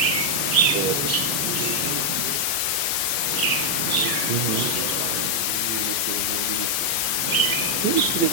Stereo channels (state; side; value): late; right; 15 ms